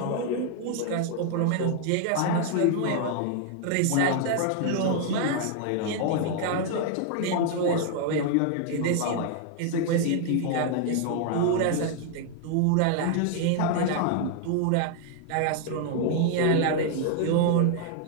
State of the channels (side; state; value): both; different; correlation 0.00